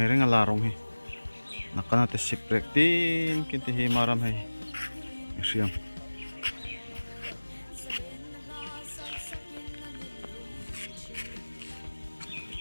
hering ala rong hi nakana te sip break tin kin te hi maram hai siam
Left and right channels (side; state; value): both; inverted; correlation -1.00